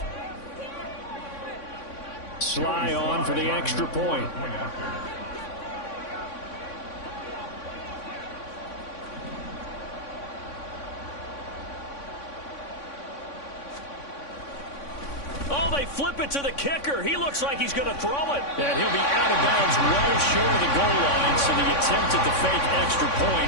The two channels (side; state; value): right; late; 3.6 ms